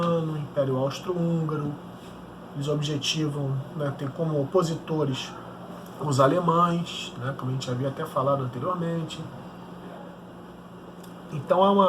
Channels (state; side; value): identical; both; correlation 1.00